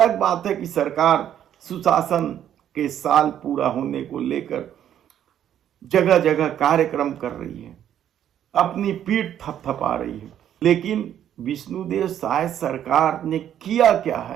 बात है कि सरकार सुशासन के साल पूरा होने को लेकर जगह जगह कार्यक्रम कर रही है, अपनी पीठ थपथपा रही है, लेकिन विष्णुदेव साय सरकार ने किया क्या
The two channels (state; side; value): quieter; left; 10.4 dB